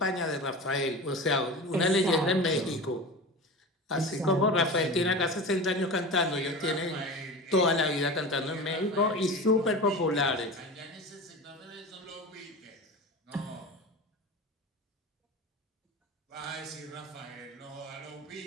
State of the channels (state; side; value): normal; both; correlation 0.30